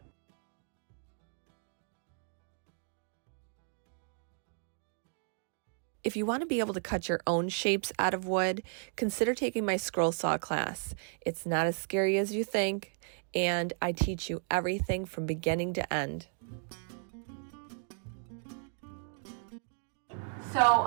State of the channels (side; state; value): left; silent; 55 dB below the other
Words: If you want to be able to cut your own shapes out of wood, consider taking my scroll saw class. It's not as scary as you think, and I teach you everything from beginning to end. So